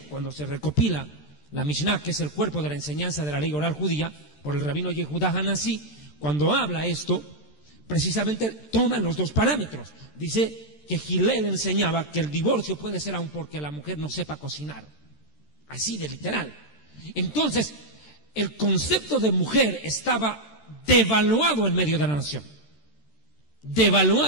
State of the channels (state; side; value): late; right; 13 ms